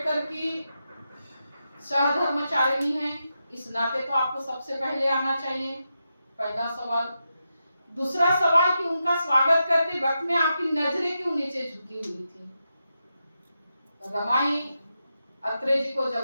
की सहधर्मचारिणी हैं, इस नाते तो आपको सबसे पहले आना चाहिए, पहला सवाल। दूसरा सवाल कि उनका स्वागत करते वक्त में आपकी नजरें क्यों नीचे झुकी हुई थी। रमाई अत्रे जी को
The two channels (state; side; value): inverted; both; correlation -0.87